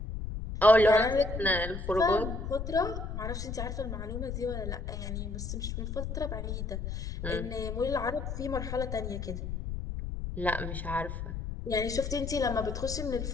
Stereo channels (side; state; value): left; noise; rumble, 5 dB below the sound